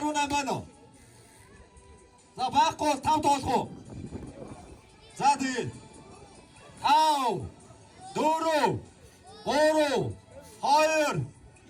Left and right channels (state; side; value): identical; both; correlation 1.00